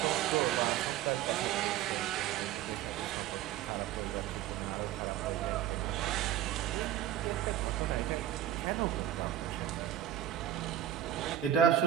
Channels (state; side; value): quieter; left; 11.6 dB